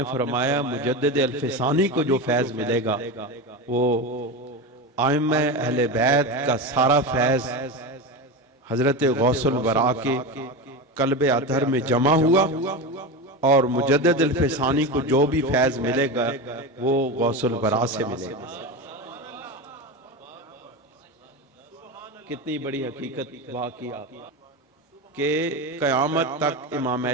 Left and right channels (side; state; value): both; normal; correlation 0.20